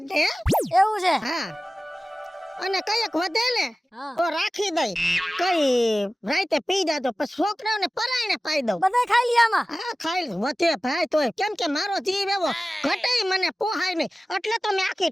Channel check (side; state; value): both; normal; correlation 0.97